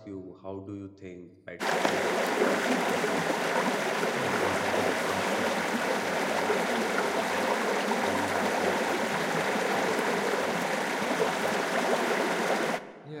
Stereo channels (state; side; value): identical; both; correlation 1.00